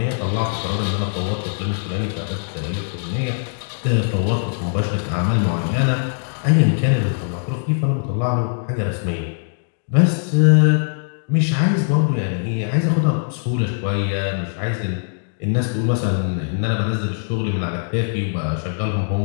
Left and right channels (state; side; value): silent; right; digital silence